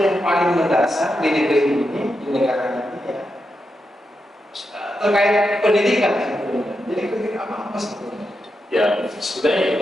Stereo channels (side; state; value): both; normal; correlation 0.86